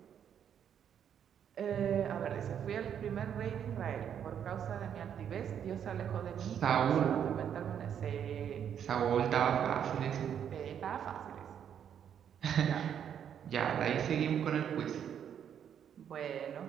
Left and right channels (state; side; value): quieter; left; 8.8 dB